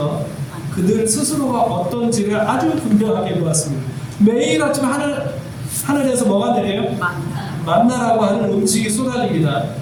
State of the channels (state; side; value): identical; both; correlation 1.00